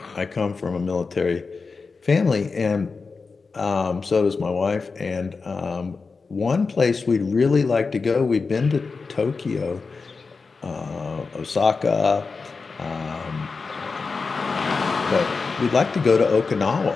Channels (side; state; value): right; quieter; 4.5 dB